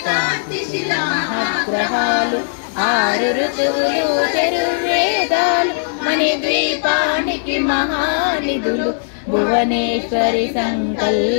శిలాగ్రహాలు ఆరు ఋతువులు చతుర్వేదాలు మణిద్వీపానికి మహానిధులు భువనేశ్వరి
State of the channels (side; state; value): right; silent; digital silence